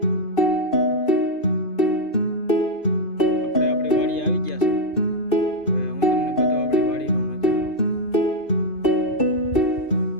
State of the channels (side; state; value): right; late; 2.6 ms